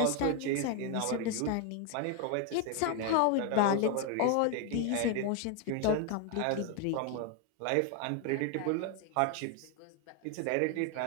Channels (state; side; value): different; both; correlation 0.01